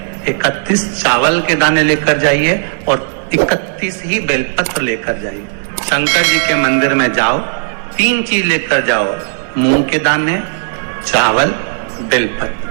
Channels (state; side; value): silent; left; digital silence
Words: 31 चावल के दाने लेकर जाइए और 31 ही बेलपत्र लेकर जाइए। शंकर जी के मंदिर में जाओ, 3 चीज लेकर जाओ, मूंग के दाने, चावल,